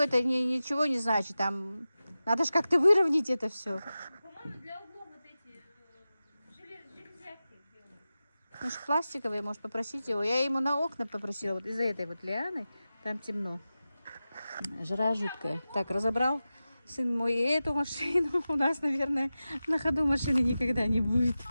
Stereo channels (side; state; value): both; inverted; correlation -0.94